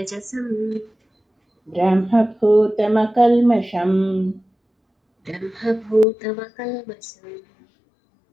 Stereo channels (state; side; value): drops out; right; at 6.1 s